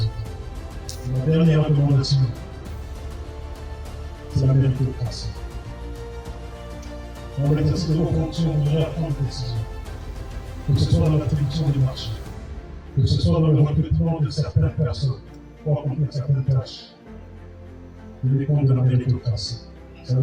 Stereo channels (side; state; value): both; identical; correlation 1.00